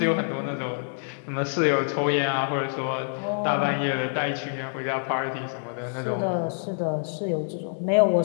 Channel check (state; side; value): silent; right; digital silence